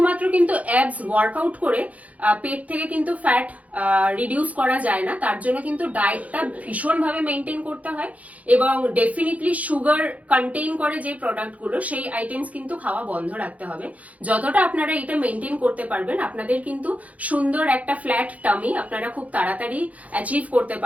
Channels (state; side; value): late; left; 0.070 ms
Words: কিন্তু অ্যাবস ওয়ার্কআউট করে পেট থেকে কিন্তু ফ্যাট রিডিউস করা যায় না। তার জন্য কিন্তু ডায়েটটা ভীষণভাবে মেনটেন করতে হয় এবং ডেফিনেটলি সুগার কন্টেইন করে যে প্রোডাক্টগুলো সেই আইটেমস কিন্তু খাওয়া বন্ধ রাখতে হবে। যতটা আপনারা এটা মেনটেন করতে পারবেন, আপনাদের কিন্তু সুন্দর একটা ফ্ল্যাট টামি আপনারা খুব তাড়াতাড়ি অ্যাচিভ করতে